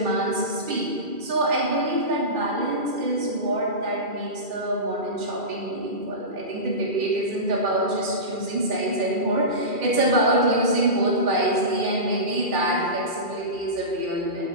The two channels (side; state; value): left; late; 2.4 ms